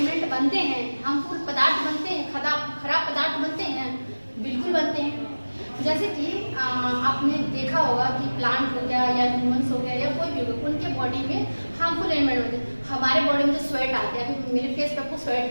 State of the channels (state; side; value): inverted; both; correlation -1.00